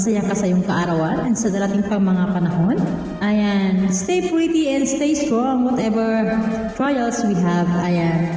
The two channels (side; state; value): left; noise; hum, 29 dB below the sound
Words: ka sa iyong kaarawan and sa darating pang mga panahon. Ayan, stay pretty and stay strong whatever trials we have.